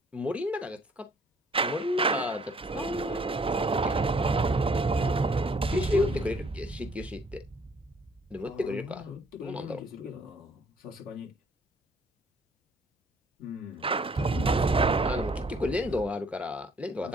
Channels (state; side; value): normal; both; correlation 0.60